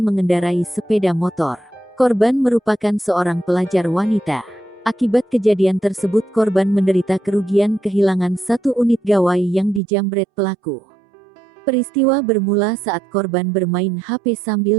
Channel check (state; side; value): drops out; left; at 9.8 s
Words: mengendarai sepeda motor. Korban merupakan seorang pelajar wanita. Akibat kejadian tersebut korban menderita kerugian kehilangan satu unit gawai yang dijambret pelaku. Peristiwa bermula saat korban bermain HP